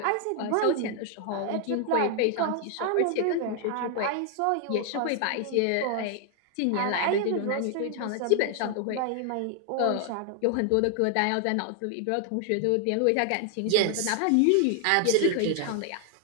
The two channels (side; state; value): both; different; correlation 0.00